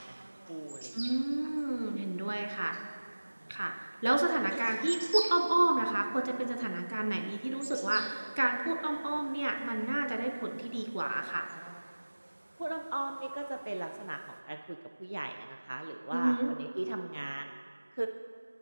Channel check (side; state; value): both; inverted; correlation -1.00